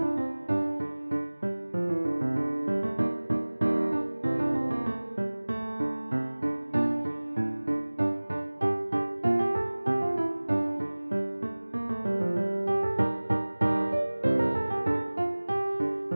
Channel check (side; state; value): both; inverted; correlation -1.00